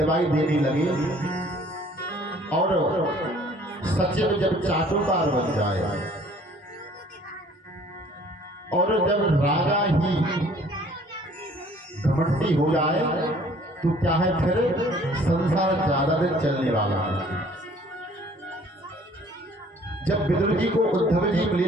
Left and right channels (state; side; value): normal; both; correlation 0.55